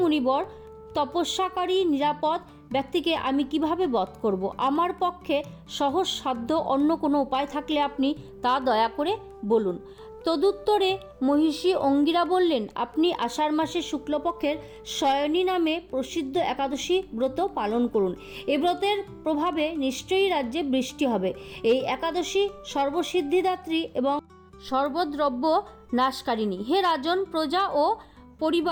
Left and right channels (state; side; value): identical; both; correlation 1.00